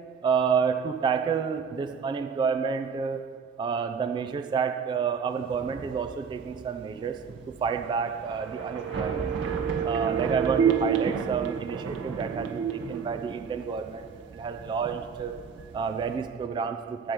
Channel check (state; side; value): quieter; left; 6.2 dB